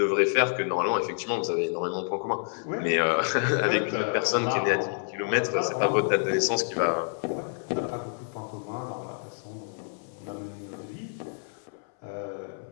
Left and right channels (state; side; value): silent; right; 59 dB below the other